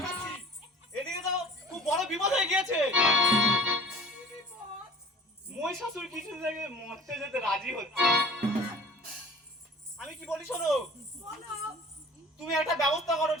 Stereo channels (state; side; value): normal; both; correlation 0.46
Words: এদিকে তো খুব বড় বিপদ হয়ে গিয়েছে। মহিষাসুর কিছু থেকে মরতে যেতে রাজি হচ্ছে। আমি কি বলি শোনো, তুমি একটা ব্যবস্থা করো,